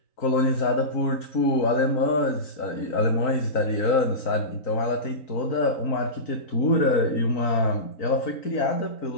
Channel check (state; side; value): late; right; 3.9 ms